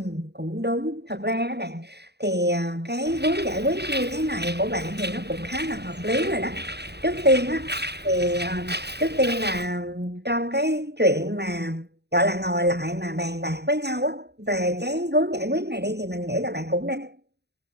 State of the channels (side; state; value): left; late; 0.48 ms